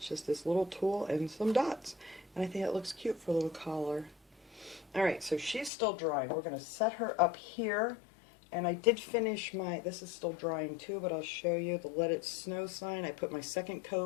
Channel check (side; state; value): right; drops out; at 5.7 s